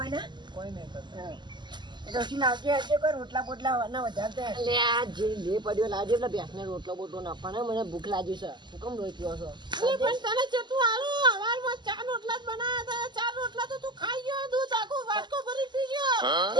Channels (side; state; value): left; late; 0.21 ms